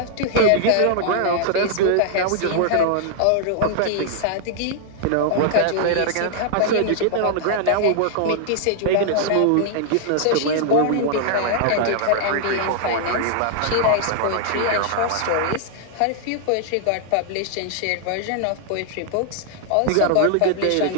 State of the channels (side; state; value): both; different; correlation -0.01